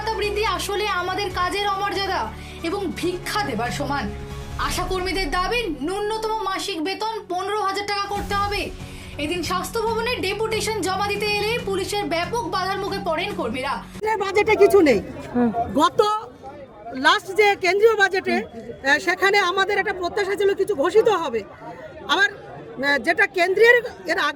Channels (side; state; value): both; identical; correlation 1.00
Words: বৃদ্ধি আসলে আমাদের কাজের অমর্যাদা এবং ভিক্ষা দেবার সমান। আশাকর্মীদের দাবি ন্যূনতম মাসিক বেতন 15,000 টাকা করতে হবে। এদিন স্বাস্থ্য ভবনের ডেপুটেশন জমা দিতে এলে পুলিশের ব্যাপক বাধার মুখে পড়েন কর্মীরা। বাজেটে কিছু নেই। গত লাস্ট যে কেন্দ্রীয় বাজেটে সেখানে আমাদের একটা প্রত্যাশা ছিল কিছু ঘোষিত হবে। আবার যেটা কেন্দ্রের এর